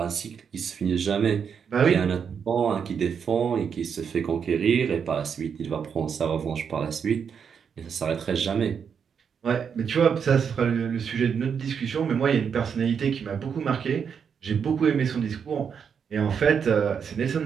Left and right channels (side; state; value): left; quieter; 7.0 dB